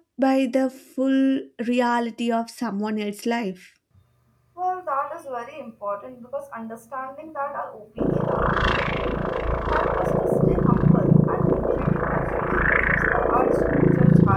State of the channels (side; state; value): both; identical; correlation 1.00